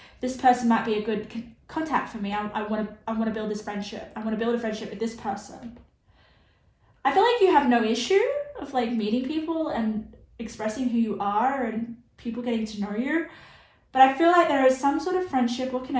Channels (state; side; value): identical; both; correlation 1.00